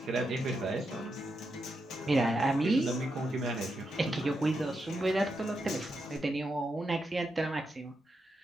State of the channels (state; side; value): normal; both; correlation 0.84